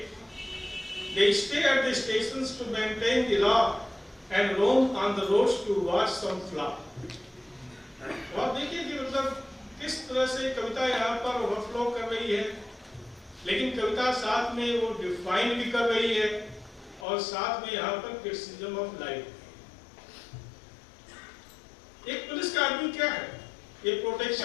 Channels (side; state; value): right; drops out; at 17.1 s